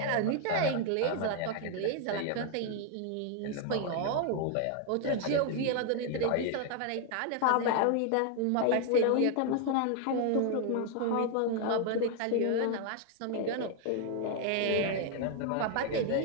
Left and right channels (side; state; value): both; different; correlation 0.00